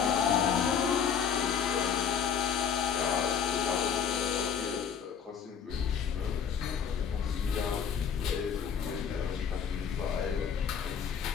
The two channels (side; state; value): right; quieter; 7.3 dB